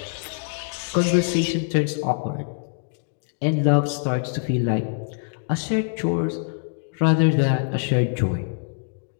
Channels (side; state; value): right; silent; digital silence